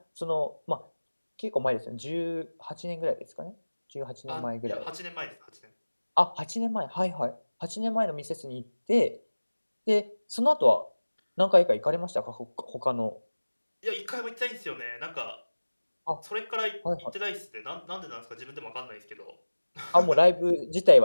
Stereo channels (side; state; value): both; inverted; correlation -1.00